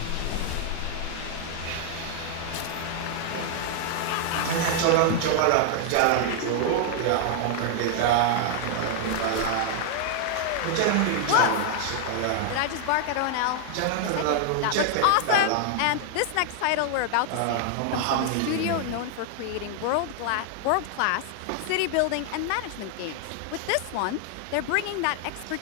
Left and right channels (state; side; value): different; both; correlation 0.00